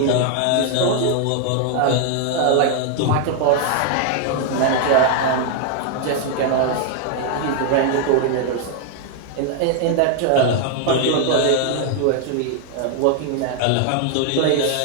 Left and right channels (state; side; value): different; both; correlation 0.00